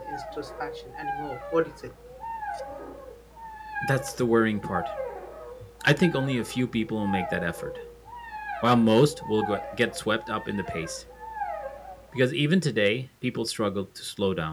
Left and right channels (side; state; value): both; identical; correlation 1.00